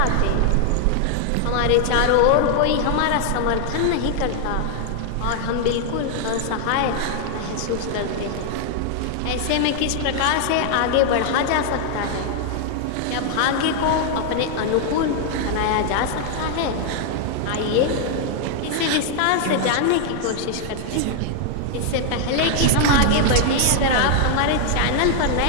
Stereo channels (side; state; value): both; different; correlation 0.00